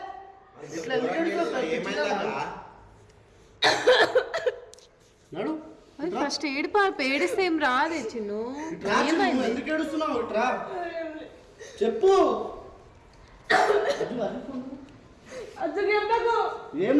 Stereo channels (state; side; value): identical; both; correlation 1.00